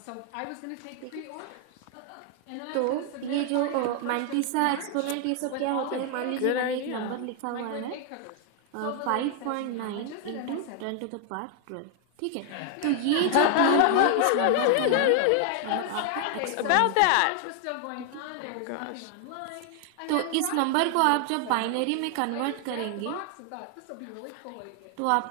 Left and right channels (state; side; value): different; both; correlation 0.00